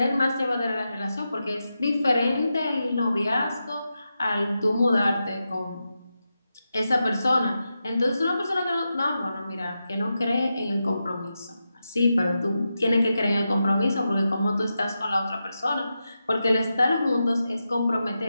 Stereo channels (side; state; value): both; inverted; correlation -0.89